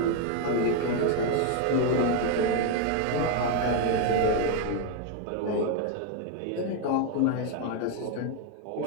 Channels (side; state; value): both; different; correlation 0.01